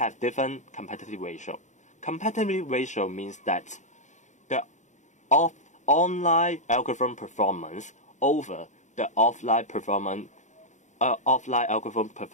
different competitive ratio. Competitive ratio means that the online algorithm performance over the offline algorithm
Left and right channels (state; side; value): late; right; 0.35 ms